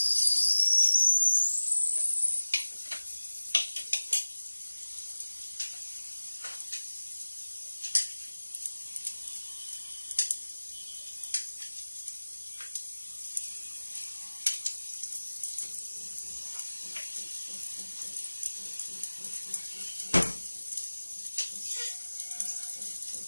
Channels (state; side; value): inverted; both; correlation -1.00